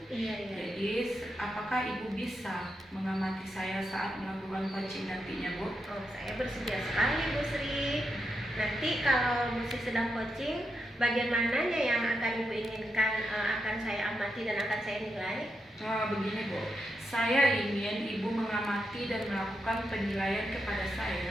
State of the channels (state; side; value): normal; both; correlation 0.85